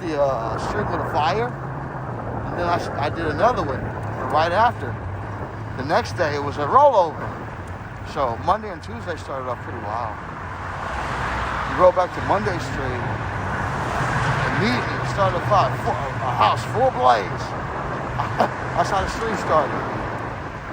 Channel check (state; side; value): identical; both; correlation 1.00